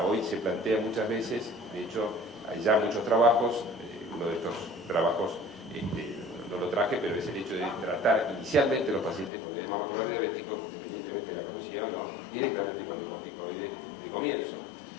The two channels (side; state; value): right; drops out; at 9.3 s